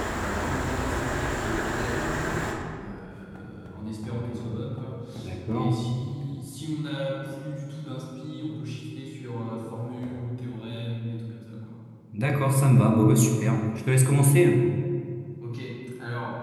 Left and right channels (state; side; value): identical; both; correlation 1.00